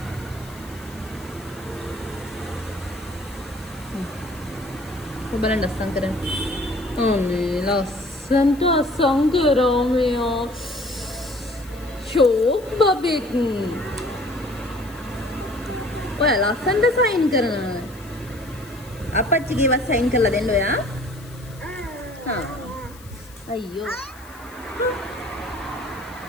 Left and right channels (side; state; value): left; noise; hiss, 22 dB below the sound